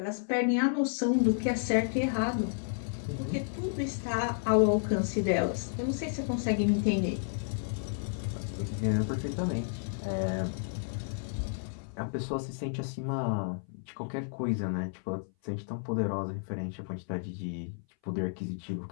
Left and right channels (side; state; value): right; silent; 57 dB below the other